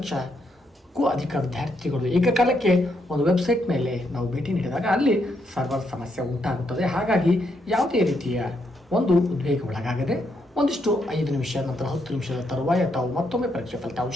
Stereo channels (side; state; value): both; normal; correlation 0.77